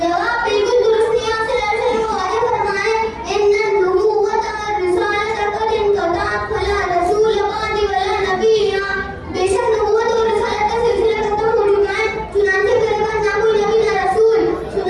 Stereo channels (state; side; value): identical; both; correlation 1.00